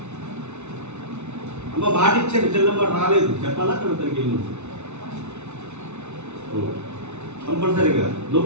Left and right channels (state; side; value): late; left; 0.82 ms